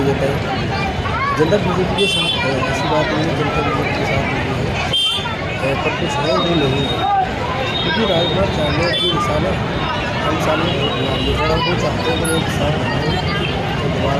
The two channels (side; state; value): both; identical; correlation 1.00